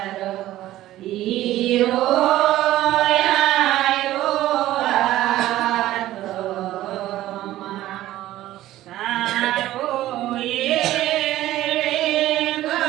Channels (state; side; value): quieter; left; 14.7 dB